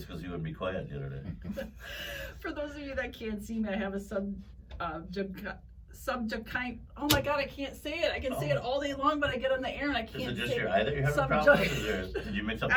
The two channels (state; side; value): identical; both; correlation 1.00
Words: because you wouldn't be quiet the other day. For those of you that can't see me, I have a oh my god, I can't say it. I can say it all day long, but I get on the air and I can't say it. Is it just your eye that you're having a problem with? Did you mix up the